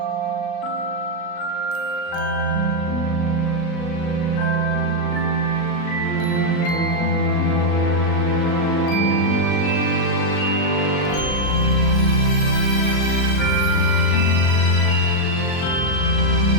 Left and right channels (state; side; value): late; right; 38 ms